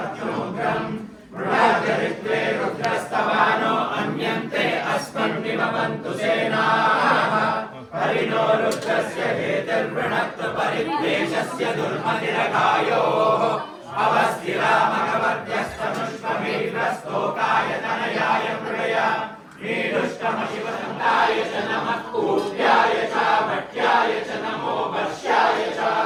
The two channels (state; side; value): identical; both; correlation 1.00